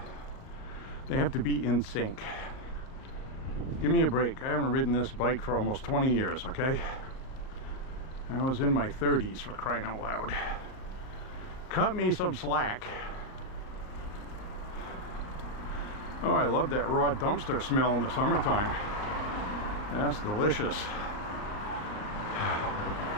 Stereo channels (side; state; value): right; late; 39 ms